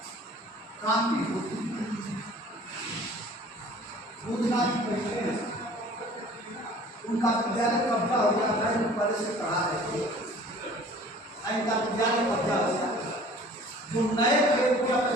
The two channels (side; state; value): both; normal; correlation 0.48